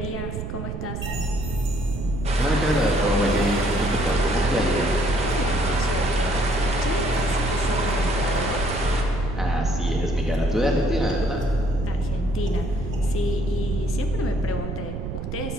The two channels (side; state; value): right; noise; rumble, 6 dB below the sound